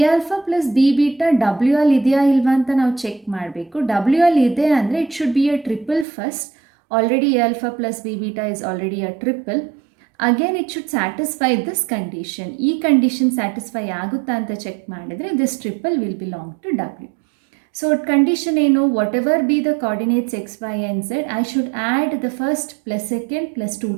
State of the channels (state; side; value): drops out; left; at 6.1 s